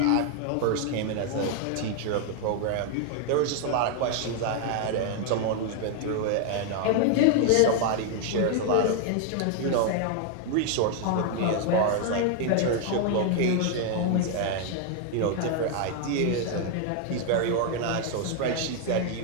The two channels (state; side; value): different; both; correlation 0.00